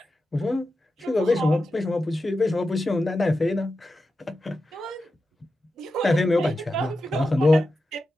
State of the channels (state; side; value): normal; both; correlation 0.91